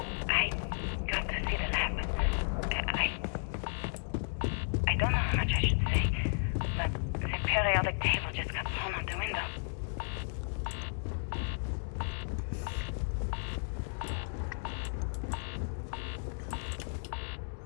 I got to see the lab. I don't know how much I should say, but the periodic table just got thrown out the window.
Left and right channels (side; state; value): right; silent; digital silence